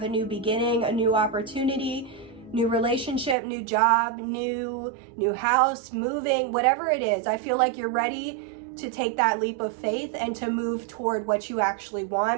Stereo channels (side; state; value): left; drops out; at 3.4 s